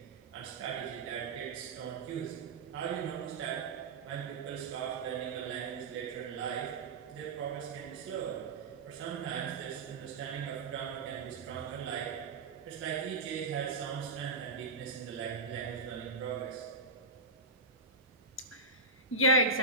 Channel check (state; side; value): quieter; left; 3.6 dB